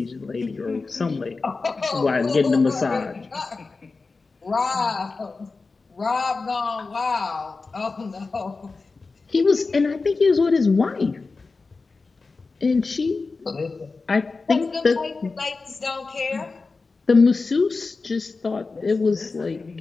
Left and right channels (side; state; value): right; quieter; 4.0 dB